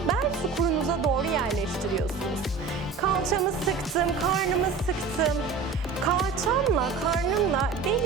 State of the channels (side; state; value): left; quieter; 5.0 dB